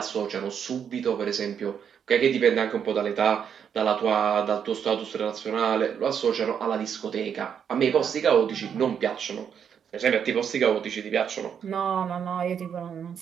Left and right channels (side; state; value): left; quieter; 7.8 dB